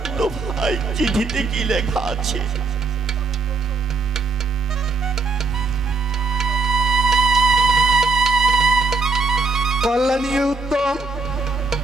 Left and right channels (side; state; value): left; quieter; 3.9 dB